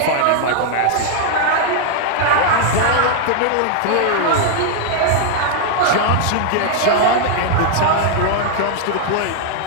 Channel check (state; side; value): different; both; correlation 0.00